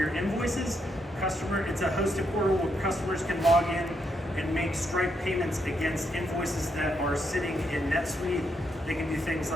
invoices. It's a hosted portal where customers can log in and make Stripe payments against invoices that are sitting in NetSuite. They can do things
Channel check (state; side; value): normal; both; correlation 0.79